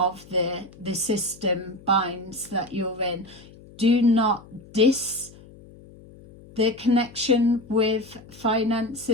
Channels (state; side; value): noise; left; hum, 21 dB below the sound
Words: the system binds that you're in. Do not diss the connection with